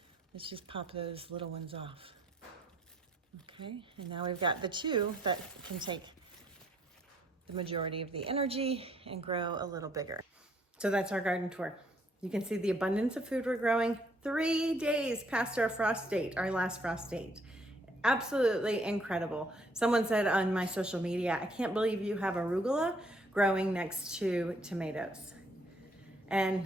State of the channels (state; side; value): normal; both; correlation 0.66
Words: Let's just pop those little ones off. Okay, and now we've got the 2 that can take the majority of the energy and grow a little bigger. So that's our garden tour. You can see the abundance of food we're growing 3 days past our frost date, our last frost date. Absolutely incredible. Someone said on my social media, I can't believe you have arugula growing next to tomatoes.